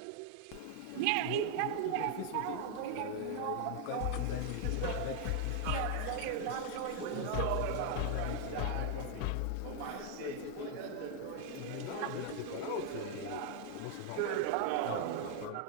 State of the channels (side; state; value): both; different; correlation 0.00